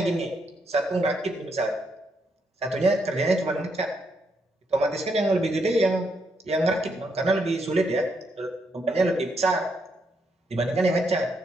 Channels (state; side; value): normal; both; correlation 0.78